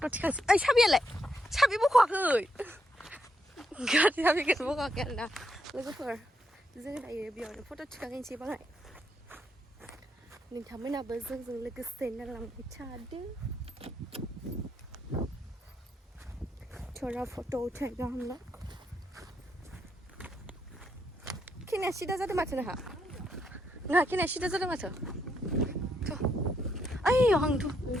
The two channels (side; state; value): both; normal; correlation 0.78